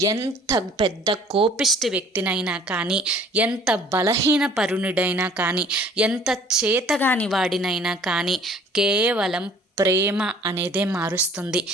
ఎంత పెద్ద కోపిష్టి వ్యక్తినైనా కానీ, ఎంత బలహీన పరుణుడైనా కానీ, ఎంత చేతగాని వాడినైనా కానీ కేవలం ప్రేమ అనేదే మారుస్తుంది.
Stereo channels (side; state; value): both; normal; correlation 0.53